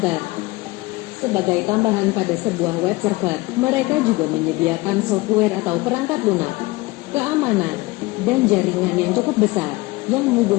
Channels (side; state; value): right; quieter; 21.8 dB